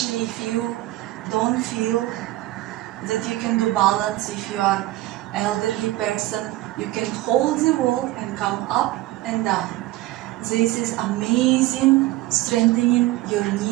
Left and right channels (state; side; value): quieter; left; 17.2 dB